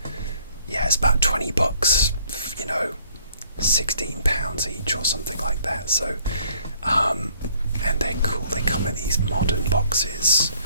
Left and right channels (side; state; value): both; inverted; correlation -0.61